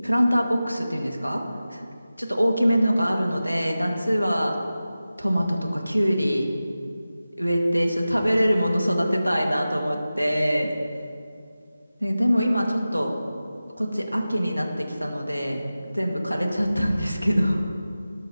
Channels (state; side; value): inverted; both; correlation -0.95